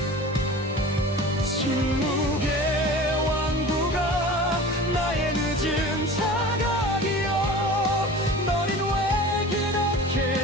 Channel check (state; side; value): normal; both; correlation 0.38